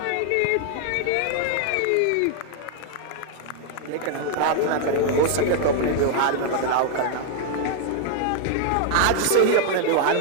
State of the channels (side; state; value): both; different; correlation 0.00